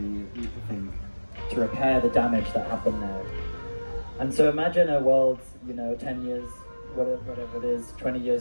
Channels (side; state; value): both; inverted; correlation -1.00